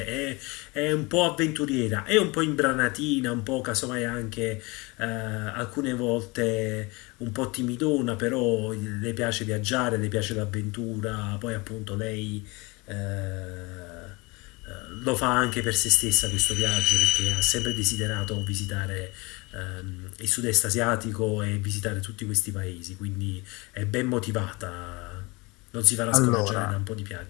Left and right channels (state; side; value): quieter; right; 25.5 dB